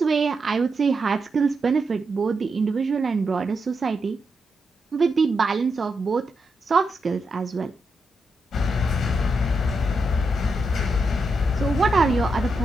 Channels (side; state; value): both; normal; correlation 0.84